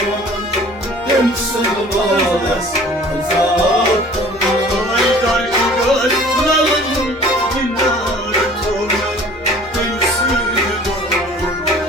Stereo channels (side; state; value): left; noise; rumble, 24 dB below the sound